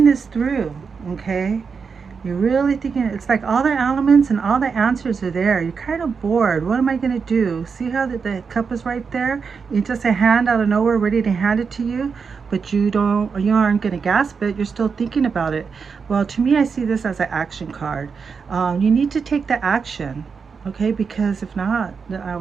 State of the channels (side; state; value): left; quieter; 5.6 dB